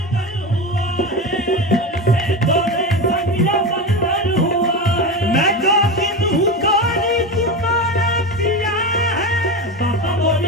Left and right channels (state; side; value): normal; both; correlation 0.21